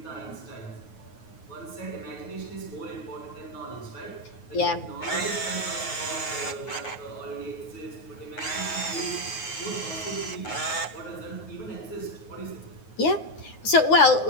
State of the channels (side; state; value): right; late; 9.4 ms